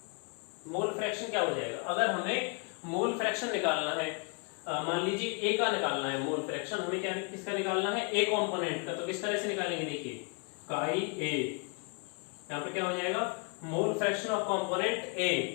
मोल फ्रैक्शन क्या हो जाएगा? अगर हमें मोल फ्रैक्शन निकालना है, मान लीजिए A का निकालना है मोल फ्रैक्शन, हमें क्या किसका निकालना है? A कंपोनेंट का। तो किस तरह से निकालेंगे? देखिए, काई A, यहाँ पे क्या हो जाएगा? Mole fraction of component A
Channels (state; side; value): quieter; right; 35.0 dB